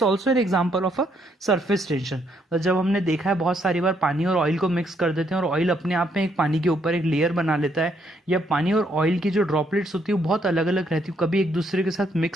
also an example of a surface tension. जब हमने देखा है बहुत सारी बार पानी और ऑयल को मिक्स कर देते हैं और ऑयल अपने आप में एक पानी के ऊपर एक लेयर बना लेता है, या पानी और ऑयल की जो ड्रॉपलेट्स होती है वो बहुत अलग अलग रहती है, कभी एक दूसरे के साथ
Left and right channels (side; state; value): both; normal; correlation 0.72